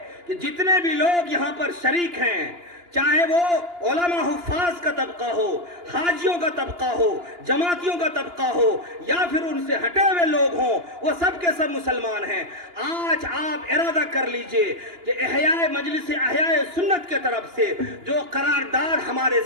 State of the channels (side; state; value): left; late; 2.9 ms